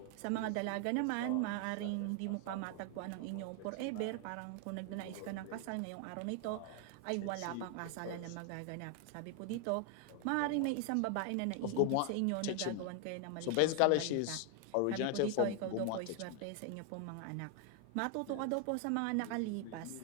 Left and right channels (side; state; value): both; different; correlation 0.00